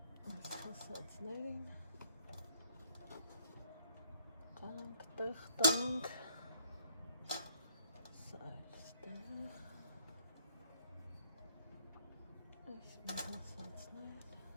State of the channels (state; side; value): inverted; both; correlation -0.66